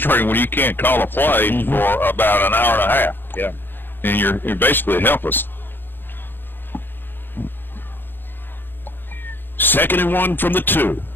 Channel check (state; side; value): late; right; 0.095 ms